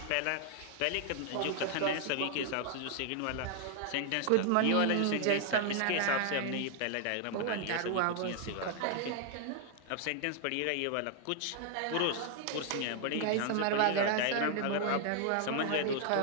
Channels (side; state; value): both; different; correlation 0.00